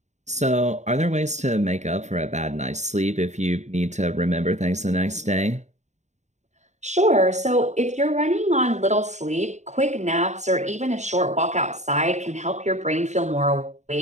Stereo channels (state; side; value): late; left; 0.34 ms